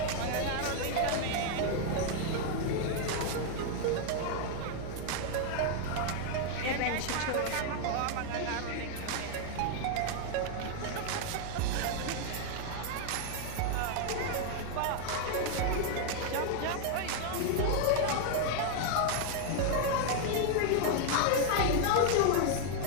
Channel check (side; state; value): both; different; correlation 0.00